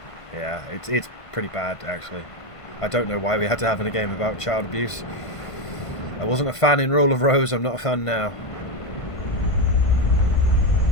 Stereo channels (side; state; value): right; late; 1.5 ms